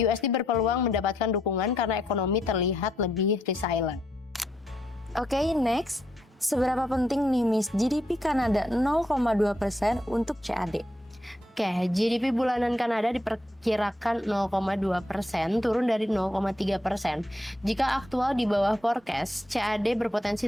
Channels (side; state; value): both; normal; correlation 0.77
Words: berpeluang mendapatkan dukungan karena ekonomi terlihat lebih resilient. Oke, next. Seberapa penting nih, Miss, GDP Kanada 0,2% untuk CAD? Oke, GDP bulanan Kanada diperkirakan 0,2%, turun dari 0,3%. Jika aktual di bawah forecast, CAD berpotensi